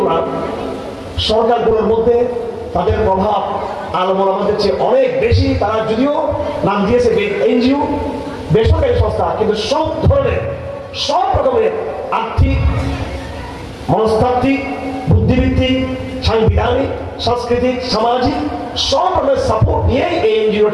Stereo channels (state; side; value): identical; both; correlation 1.00